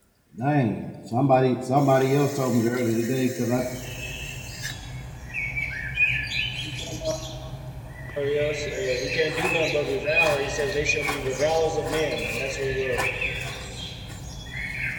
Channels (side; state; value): both; identical; correlation 1.00